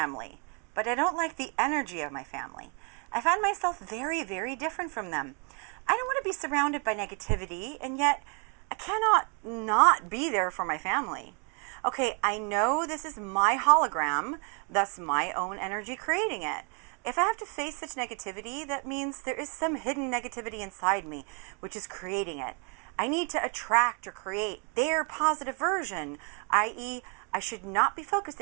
but I don't like the energy of my family. I find myself very, very different from them. I don't want to be surrounded by negativity, and yet I cannot not be there for my family. Okay, I know this is my hologram, thus my own energy creating it. If I have to face such negativity, that means there is some hidden negativity inside me, which is creating it. I need to attract or create their positive version, i.e., I should not be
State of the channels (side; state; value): left; quieter; 36.7 dB